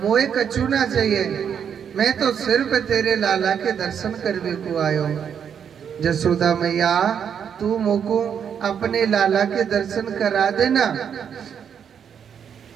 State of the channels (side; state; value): left; quieter; 7.9 dB